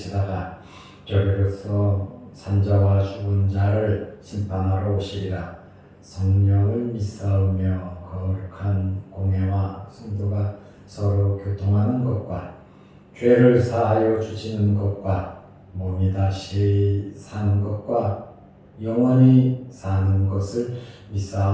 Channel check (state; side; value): identical; both; correlation 1.00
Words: 저리로서 산자와 죽은 자를 심판하러 오시리라. 성령을 믿사오며 거룩한 공회와 성도가 서로 교통하는 것과 죄를 사하여 주시는 것과 몸이 다시 사는 것과 영원히 사는 것을